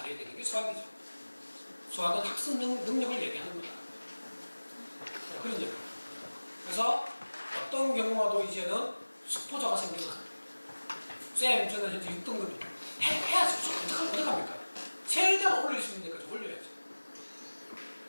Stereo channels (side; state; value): both; inverted; correlation -1.00